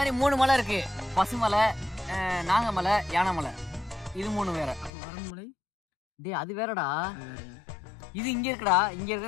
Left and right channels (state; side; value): drops out; right; at 4.9 s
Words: 3 மலை இருக்கு, பசுமலை, நாகமலை, யானைமலை. இது 3 வேற. பரம்புமலை டேய் அது வேறடா, இது இங்க இருக்குடா. இங்க